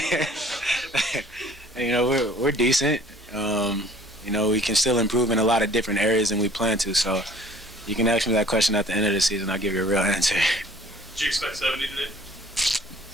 We're decent. We can still improve in a lot of different areas than we plan to. So you can ask me that question at the end of the season. I'll give you a real answer. Did you expect 70 today?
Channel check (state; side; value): normal; both; correlation 0.53